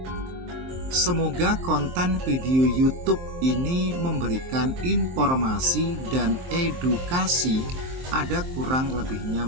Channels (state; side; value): late; left; 23 ms